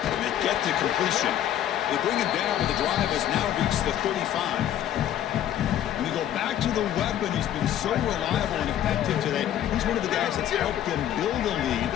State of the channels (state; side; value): quieter; right; 11.3 dB